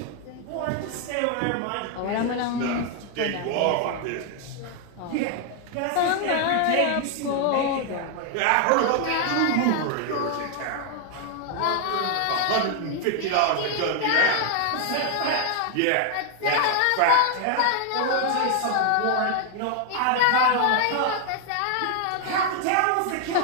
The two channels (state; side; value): different; both; correlation 0.00